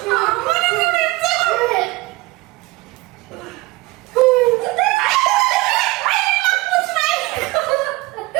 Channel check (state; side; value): quieter; left; 21.4 dB